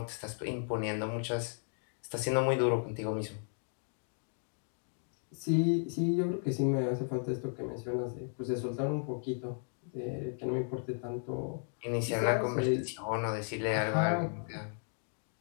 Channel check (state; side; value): silent; right; 55 dB below the other